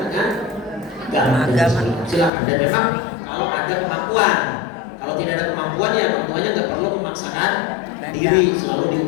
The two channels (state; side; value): drops out; right; at 2.3 s